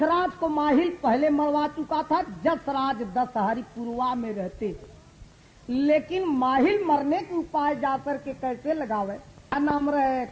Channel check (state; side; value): identical; both; correlation 1.00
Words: को माहिल पहले मरवा चुका था, जसराज दशहरीपुरवा में रहते। लेकिन माहिल मरने के उपाय जाकर के कैसे लगावे? क्या नाम रहे?